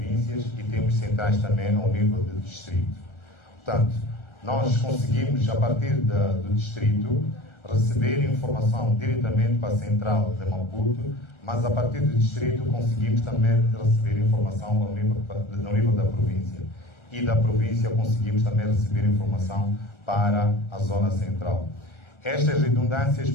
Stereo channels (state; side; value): late; right; 1.4 ms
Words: e temos centrais também ao nível do distrito. Portanto, nós conseguimos, a partir do distrito, receber informação diretamente para a central de Maputo, mas a partir do distrito conseguimos também receber informação no nível da província. E da província conseguimos também receber informação para a zona central. Estas redundâncias